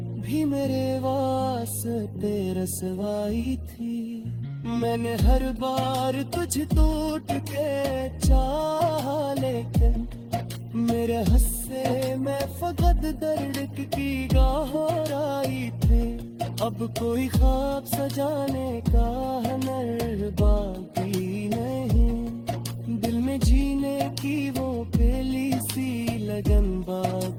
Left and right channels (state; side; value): identical; both; correlation 1.00